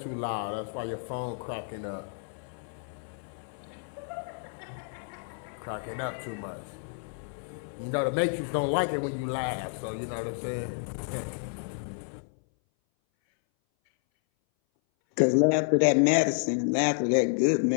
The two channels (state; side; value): silent; right; 58 dB below the other